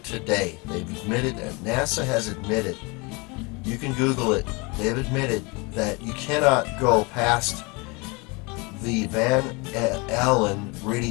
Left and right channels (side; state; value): right; quieter; 28.2 dB